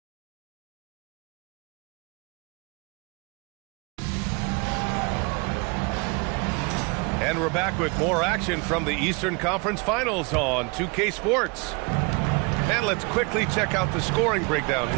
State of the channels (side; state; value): left; quieter; 30.0 dB